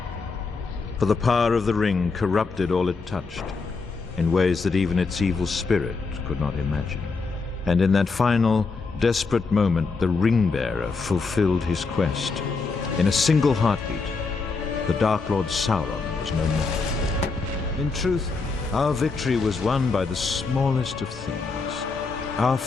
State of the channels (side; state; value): right; quieter; 4.3 dB